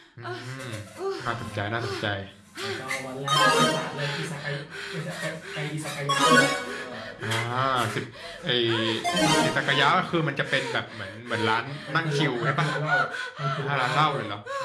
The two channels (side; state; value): both; identical; correlation 1.00